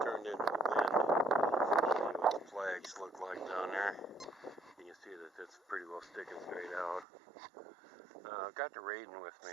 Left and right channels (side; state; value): left; drops out; at 7.1 s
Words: turned into wind. I'll show you what the flags look like down there. You can see that it's pretty well sticking straight out. I've got the raiden with me